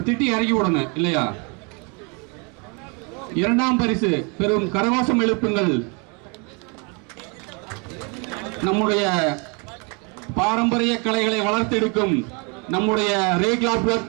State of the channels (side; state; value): left; quieter; 32.9 dB